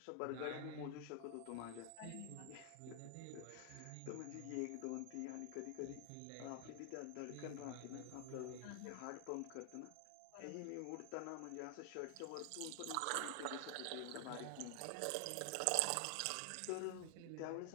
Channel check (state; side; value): different; both; correlation 0.00